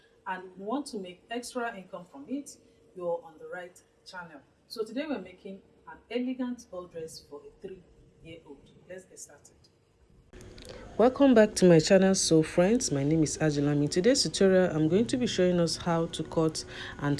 and want to make extra income from it, you're on the right channel. So today we're making an elegant ball dress for a 3-year-old. Let's get started. Welcome back to my channel. So friends, my name is Ajulam. In today's tutorial I'm going to be showing us how to cut and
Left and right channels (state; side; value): identical; both; correlation 1.00